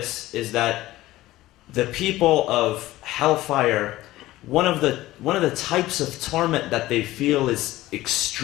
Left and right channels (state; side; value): quieter; right; 16.7 dB